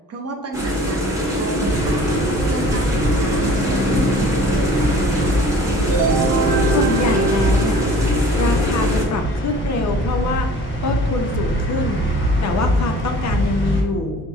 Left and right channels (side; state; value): both; normal; correlation 0.48